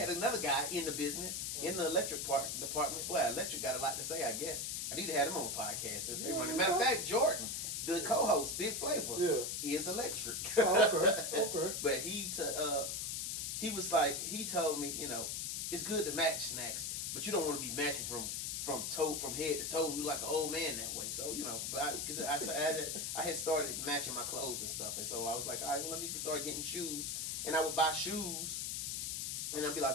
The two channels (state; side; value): noise; left; hiss, 2 dB below the sound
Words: another guy in the business, in the electric department. Boy, electric got a lot to say, I guess. I need to have him on the podcast since they running. Matter of fact, Jordan, the co-host, Big Flavor, is electric. Okay. But he was like, he told me, it's good to match Snacks, but you don't want to be matching from head to toe. You like an old man that way. So, but because I had started matching my clothes and stuff. And so I was like, all right, well, let me start getting shoes. And I would buy shoes. And I'd be